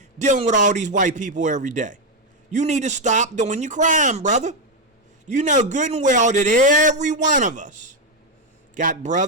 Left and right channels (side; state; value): both; normal; correlation 0.05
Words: dealing with all these white people every day. You need to stop doing your crime, brother. You know good and well that every one of us got